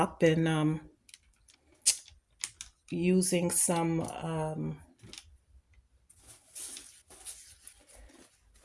and using some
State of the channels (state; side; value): identical; both; correlation 1.00